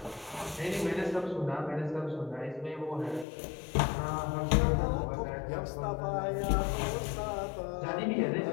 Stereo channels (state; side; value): drops out; right; at 3.2 s